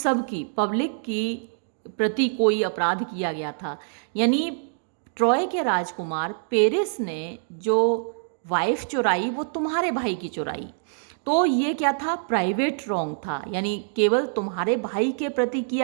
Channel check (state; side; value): silent; left; digital silence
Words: की, पब्लिक की प्रति कोई अपराध किया गया था। यानी ट्रॉय के राजकुमार पेरिस ने जो वाइफ चुराई वो तुम्हारे भाई की चुराई, तो ये क्या था? प्राइवेट रॉन्ग था, यानी केवल तुम्हारे भाई के प्रति